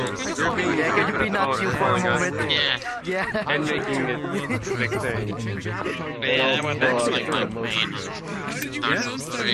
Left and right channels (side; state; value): both; identical; correlation 1.00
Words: Could be not you for a moment. Yeah. And making it Yeah, that's like my main Dark Souls 3.